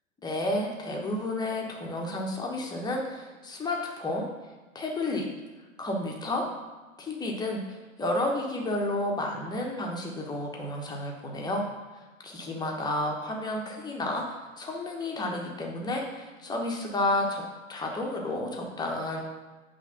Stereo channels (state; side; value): normal; both; correlation 0.30